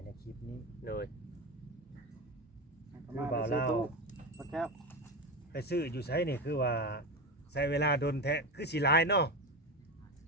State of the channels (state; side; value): normal; both; correlation 0.19